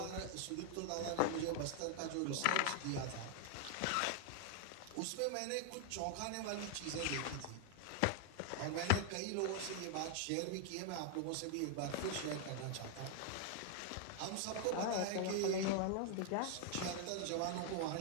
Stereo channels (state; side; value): different; both; correlation 0.00